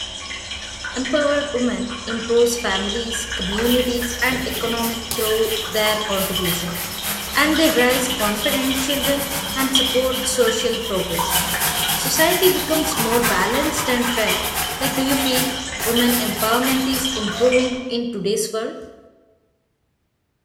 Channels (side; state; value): both; identical; correlation 1.00